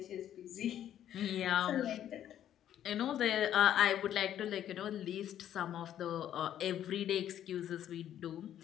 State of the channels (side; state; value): right; quieter; 10.9 dB